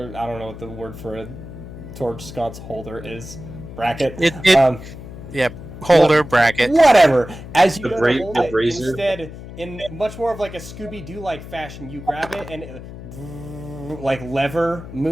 I don't know what the word for a torch sconce holder is, bracket. Holder, bracket. Whatever. As you go to hold it, instead, in much more of like a Scooby-Doo-like fashion, you grab it and it, like lever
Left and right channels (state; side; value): noise; left; hum, 13 dB below the sound